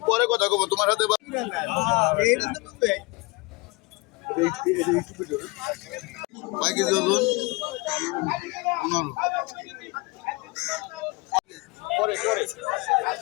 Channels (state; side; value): quieter; right; 25.2 dB